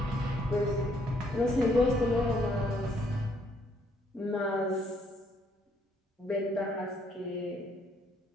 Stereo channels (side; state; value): both; normal; correlation 0.68